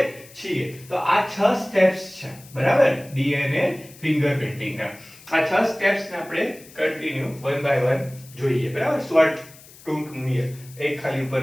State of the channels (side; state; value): left; noise; hiss, 21 dB below the sound